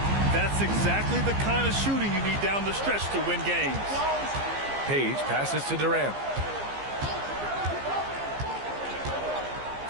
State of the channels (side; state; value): left; late; 15 ms